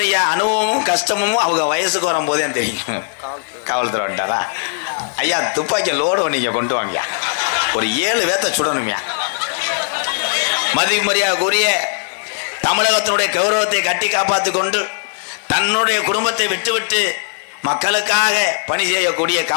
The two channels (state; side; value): silent; right; digital silence